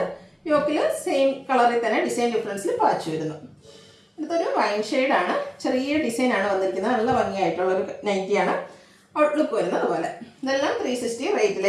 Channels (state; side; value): identical; both; correlation 1.00